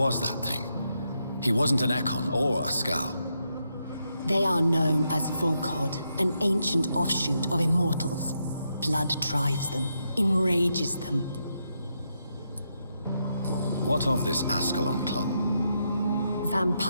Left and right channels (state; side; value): inverted; both; correlation -0.81